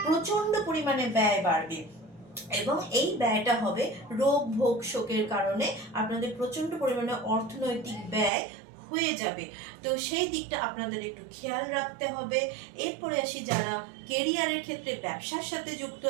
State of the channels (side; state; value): left; drops out; at 8.3 s